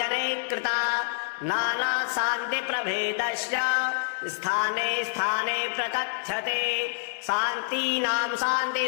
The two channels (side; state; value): right; silent; 60 dB below the other